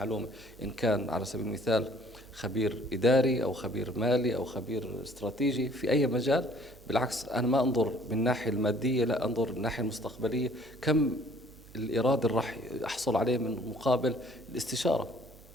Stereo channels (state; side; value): noise; right; hum, 23 dB below the sound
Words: إن كان على سبيل المثال خبير إداري أو خبير مالي أو خبير استراتيجي في أي مجال. بالعكس أنا ما أنظر من الناحية المادية، لا أنظر من الناحية المستقبلية، كم الإيراد اللي راح أحصل عليه من مقابل الاستشارة،